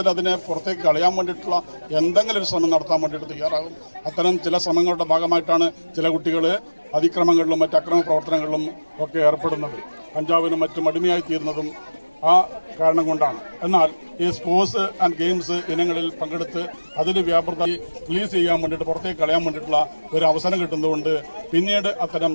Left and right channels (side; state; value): both; inverted; correlation -1.00